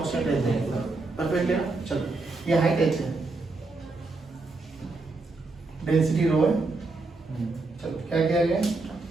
रहता है। परफेक्ट है ना? चलो ये हाइट h है, डेंसिटी रो है। चलो क्या किया गया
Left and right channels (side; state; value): left; quieter; 3.5 dB